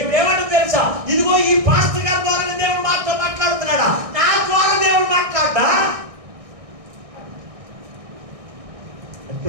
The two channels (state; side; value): late; left; 1.6 ms